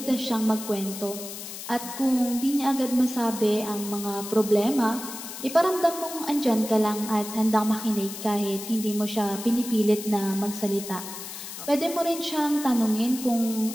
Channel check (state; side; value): noise; left; hiss, 10 dB below the sound